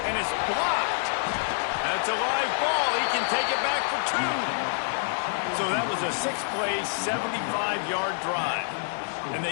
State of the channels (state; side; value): silent; right; digital silence